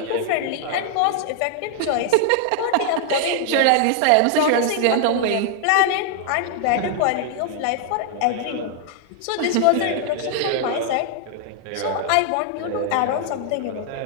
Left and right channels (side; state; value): both; different; correlation 0.00